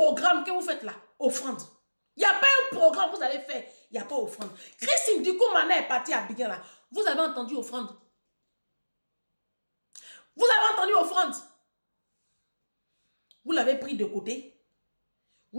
que vous faites là, offrande. Il n'y a pas un programme que vous allez faire, il n'y a pas offrande. Christine Dikoumana est partie à Biguin là. Vous avez entendu offrande? Vous avez entendu offrande? Vous l'avez pris de côté,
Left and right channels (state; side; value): inverted; both; correlation -1.00